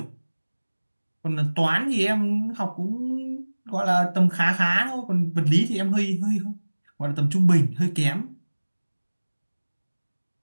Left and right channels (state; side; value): inverted; both; correlation -1.00